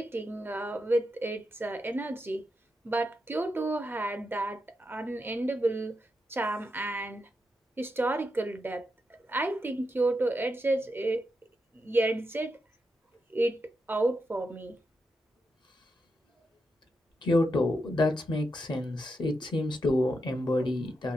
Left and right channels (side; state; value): both; normal; correlation 0.85